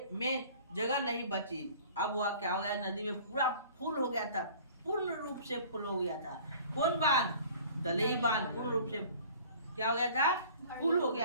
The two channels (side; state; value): both; inverted; correlation -0.48